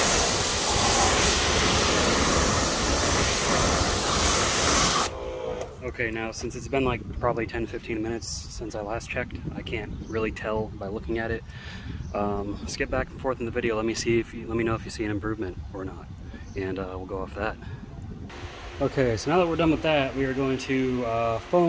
Okay, now since it's been like probably 10-15 minutes since I last checked, I can't really tell by looking at it. Skip back and forth in the video. Let me know if you see an improvement or not, and we'll go off that. Okay, so now that we're done with that, we are going to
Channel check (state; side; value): identical; both; correlation 1.00